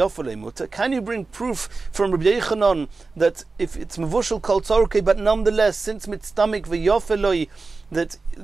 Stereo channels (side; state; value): left; quieter; 3.9 dB